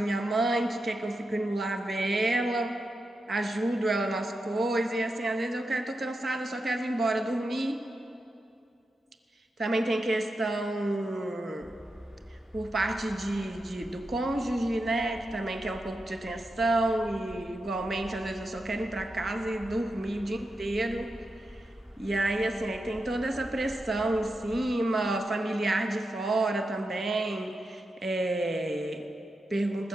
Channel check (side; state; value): both; normal; correlation 0.88